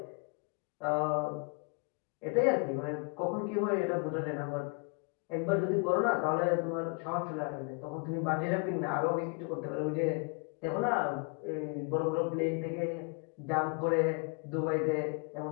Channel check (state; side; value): quieter; right; 35.4 dB